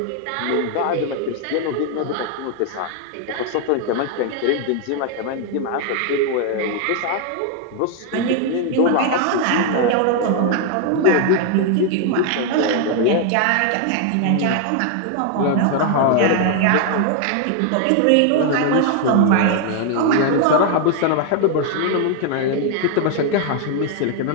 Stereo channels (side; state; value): both; different; correlation 0.00